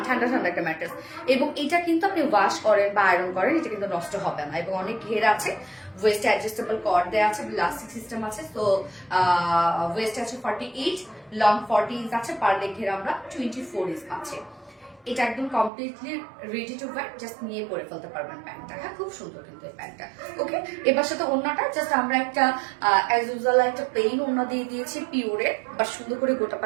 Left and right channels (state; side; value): drops out; left; at 15.7 s